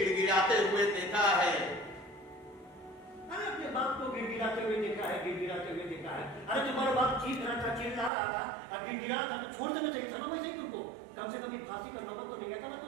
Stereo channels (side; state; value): left; drops out; at 8.1 s